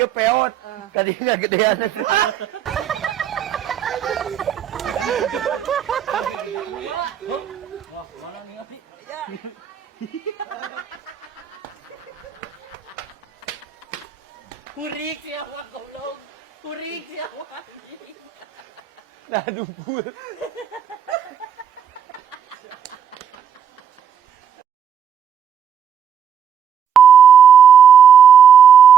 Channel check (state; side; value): quieter; left; 8.4 dB